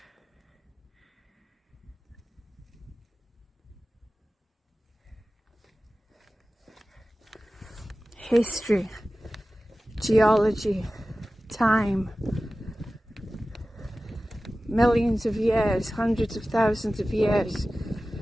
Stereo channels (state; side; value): normal; both; correlation 0.96